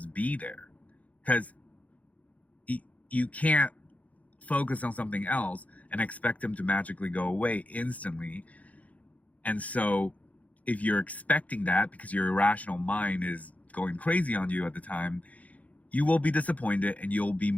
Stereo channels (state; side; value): late; right; 0.070 ms